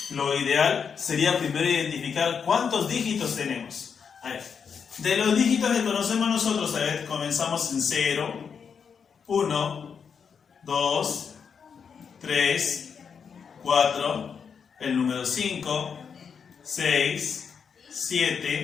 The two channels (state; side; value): quieter; right; 6.5 dB